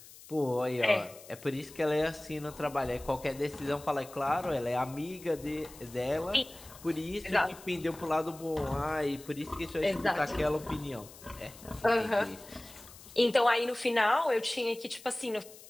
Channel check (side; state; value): left; noise; hiss, 19 dB below the sound